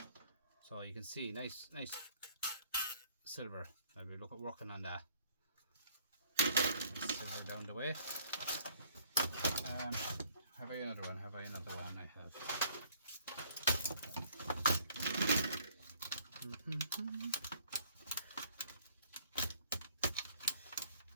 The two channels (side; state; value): both; inverted; correlation -0.59